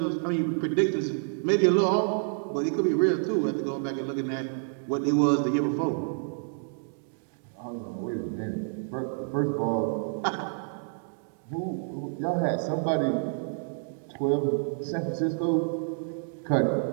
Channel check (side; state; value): left; silent; digital silence